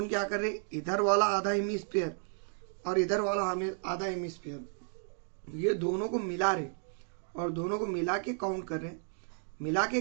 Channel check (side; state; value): left; silent; 56 dB below the other